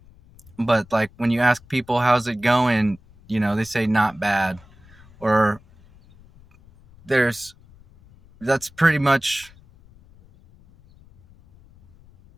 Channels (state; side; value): noise; left; rumble, 26 dB below the sound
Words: But like when you ask people how's it going, they say not bad, or that's pretty much